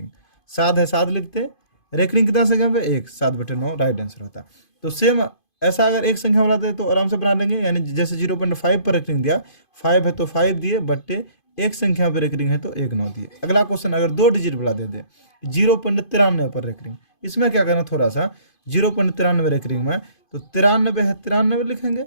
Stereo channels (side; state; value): right; late; 2.5 ms